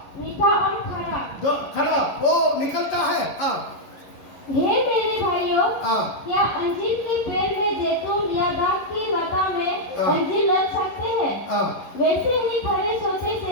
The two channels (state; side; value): late; right; 11 ms